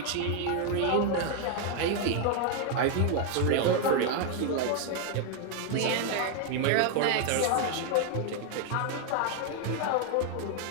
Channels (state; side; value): different; both; correlation 0.00